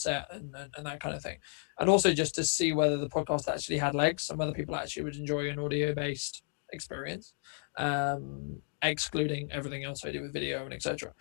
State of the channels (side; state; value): right; silent; 56 dB below the other